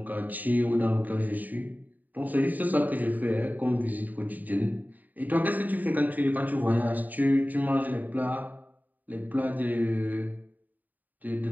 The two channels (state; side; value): late; left; 0.084 ms